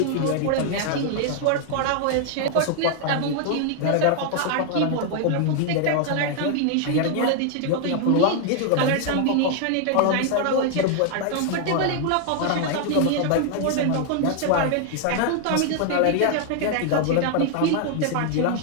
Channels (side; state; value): both; different; correlation 0.00